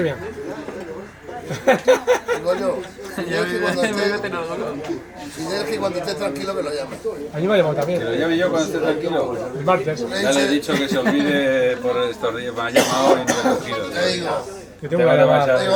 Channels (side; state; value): both; identical; correlation 1.00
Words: viens. Fidel que cuando esté tranquilo me lo llame. A mí me ha llamado Que lo también. llame yo cuando esté tranquilo. El martes. Ya le he dicho que se olvide por estos días. Me ha llamado y no me ha cogido. Te digo, Que tengo una llamada. Digo,